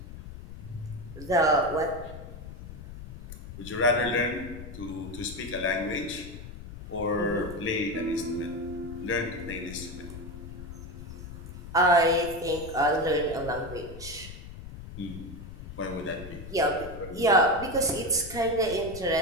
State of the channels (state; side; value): noise; left; rumble, 12 dB below the sound